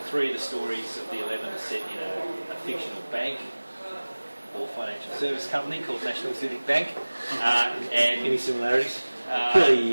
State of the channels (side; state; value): both; inverted; correlation -1.00